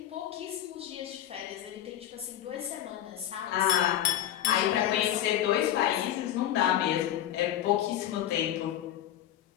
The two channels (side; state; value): right; quieter; 11.8 dB